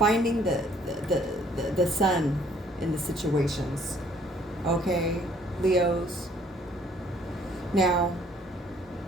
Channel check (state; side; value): normal; both; correlation 0.62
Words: the sun in the situations. Okay, Leos. Now,